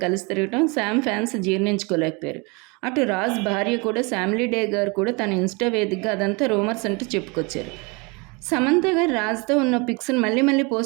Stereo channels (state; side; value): quieter; left; 29.2 dB